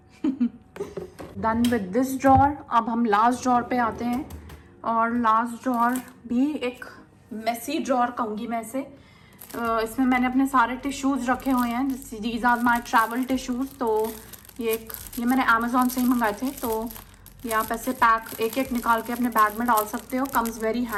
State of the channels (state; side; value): identical; both; correlation 1.00